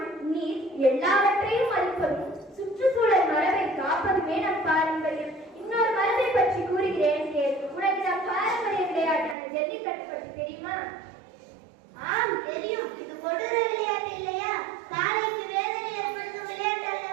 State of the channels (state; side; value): drops out; left; at 9.3 s